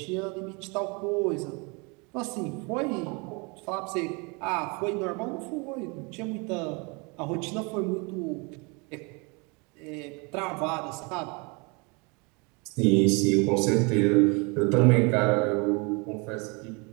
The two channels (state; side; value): quieter; left; 30.5 dB